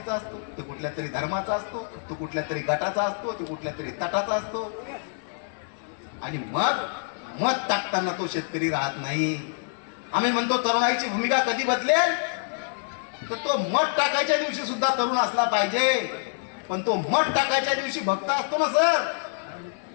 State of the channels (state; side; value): silent; right; 58 dB below the other